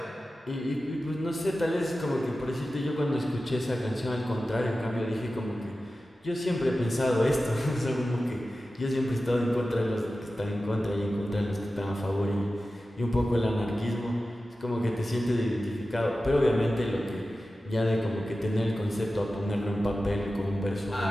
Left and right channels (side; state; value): both; normal; correlation 0.94